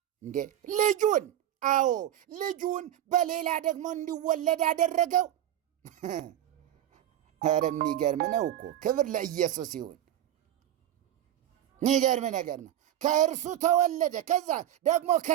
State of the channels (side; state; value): left; quieter; 11.9 dB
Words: እንዴ ልጁን? አዎ ልጁን በሌላ ደግሞ እንዲወለድ አደረገው። ኧረ የሚገርም ነው እኮ። ክብር ለኢየሱስ ይሁን። የሚገርም ነገር ነው። ከእርሱ ተወለደ፣ ከዛ ደግሞ